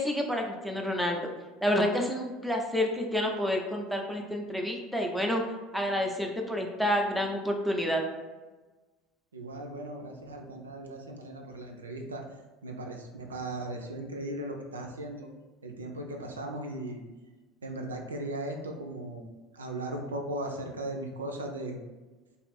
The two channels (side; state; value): both; normal; correlation 0.53